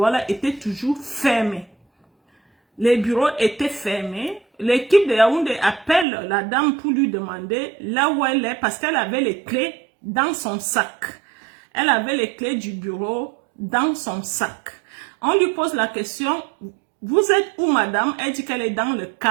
étaient toujours fermés. Les bureaux étaient fermés. L'équipe de Yaoundé appelle la dame pour lui demander là où elle est parce qu'elle avait les clés dans son sac. Elle avait les clés du bureau dans son sac. On lui pose la question, vous êtes où madame? Elle dit qu'elle est dans le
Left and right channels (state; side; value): drops out; left; at 6.1 s